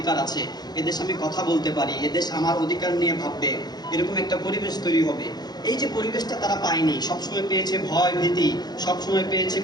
আছে, এদেশে আমি কথা বলতে পারি, এদেশ আমার অধিকার নিয়ে ভাববে, এরকম একটা পরিবেশ তৈরি হবে। এই যে পরিবেশটা তারা পায়নি, সবসময় পেয়েছে ভয় ভীতি, সবসময় পেয়েছে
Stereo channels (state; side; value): late; right; 0.20 ms